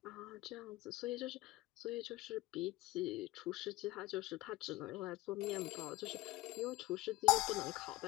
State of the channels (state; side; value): quieter; right; 19.0 dB